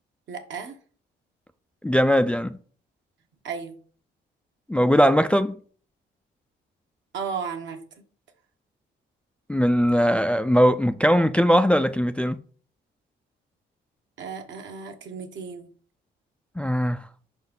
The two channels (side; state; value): both; normal; correlation 0.92